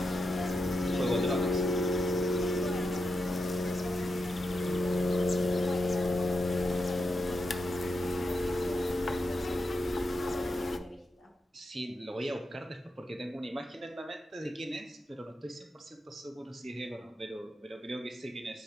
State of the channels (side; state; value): both; normal; correlation 0.86